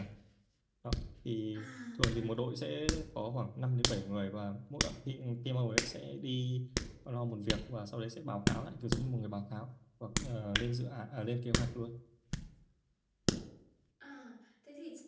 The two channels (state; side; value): identical; both; correlation 1.00